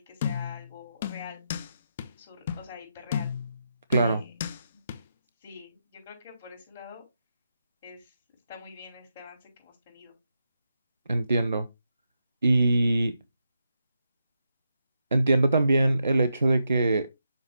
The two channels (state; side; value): inverted; both; correlation -0.84